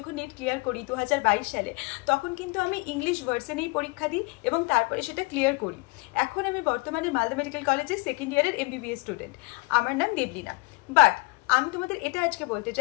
নিট ক্লিয়ার করি 2022 সালে, তখন কিন্তু আমি ইংলিশ ভার্সনেই পরীক্ষা দিই এবং তারপরে সেটা ক্লিয়ার করি। এখন আমি বর্তমানে মালদা মেডিকেল কলেজের সেকেন্ড ইয়ারের MBBS স্টুডেন্ট। আমার নাম দেবলীনা। বাট আমি তোমাদের এটা আজকে বলতে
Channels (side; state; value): right; quieter; 27.1 dB